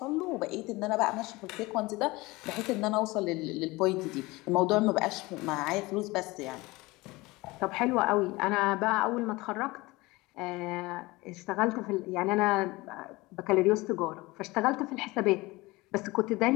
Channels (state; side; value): quieter; right; 21.8 dB